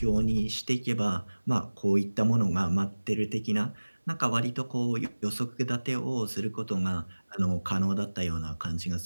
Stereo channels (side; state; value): both; inverted; correlation -1.00